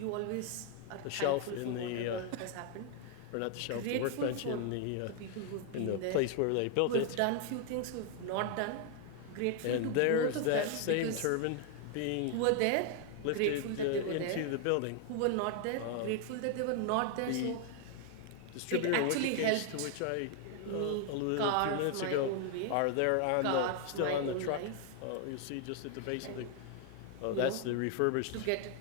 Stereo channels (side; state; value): both; different; correlation 0.00